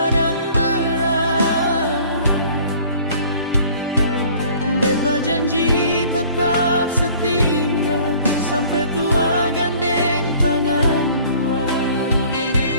berat. Beta janji tetap setia sampai tua gandeng tangan dua.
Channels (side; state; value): both; inverted; correlation -0.52